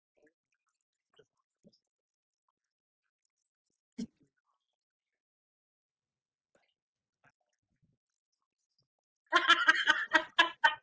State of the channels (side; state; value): both; identical; correlation 1.00